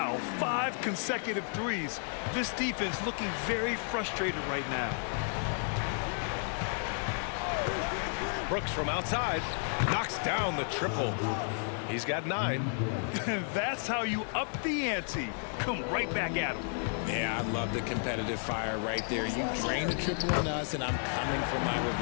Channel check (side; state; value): right; silent; 56 dB below the other